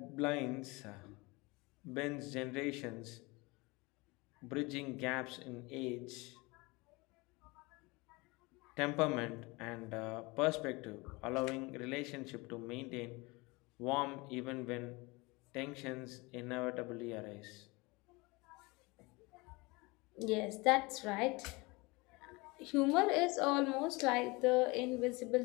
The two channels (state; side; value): quieter; right; 25.0 dB